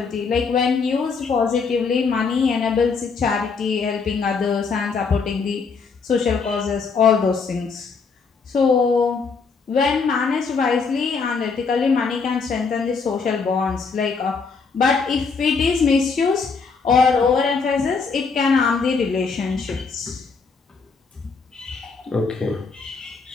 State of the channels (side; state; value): right; quieter; 5.0 dB